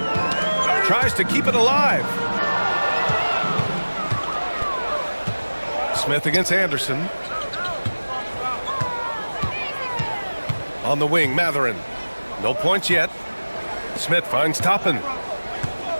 Tries to keep it alive. Smith against Anderson. On the wing, Matherin. No points yet. Smith finds Toppin.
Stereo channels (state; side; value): inverted; both; correlation -1.00